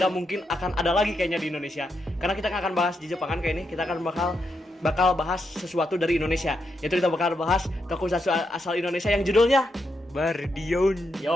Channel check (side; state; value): both; normal; correlation 0.82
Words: mungkin akan ada lagi kayaknya di Indonesia. Karena kita nggak akan bahas di Jepangan kayak ini, kita akan bakal bahas sesuatu dari Indonesia. Yaitu kita bakal bahas tokusatsu asal Indonesia yang judulnya Bardion.